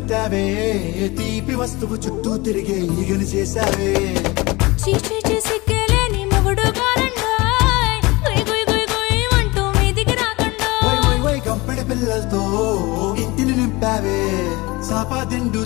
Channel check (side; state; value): right; quieter; 23.0 dB